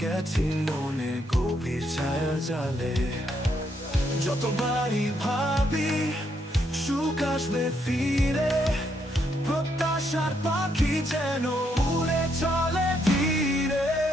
গেছি মনে গভীর ছায়া জালে। যতবারই ভাবি সুখ আসবে ফিরে, প্রত্যাশার পাখি যেন উড়ে চলে ধীরে।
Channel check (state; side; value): normal; both; correlation 0.76